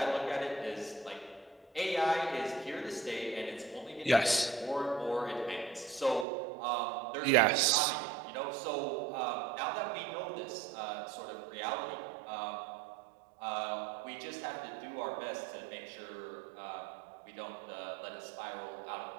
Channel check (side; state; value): left; drops out; at 6.2 s